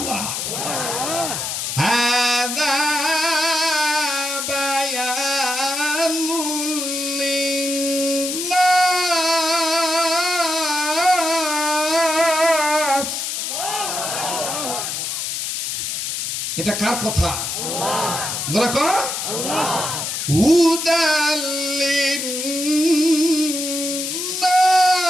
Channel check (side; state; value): left; noise; hiss, 3 dB below the sound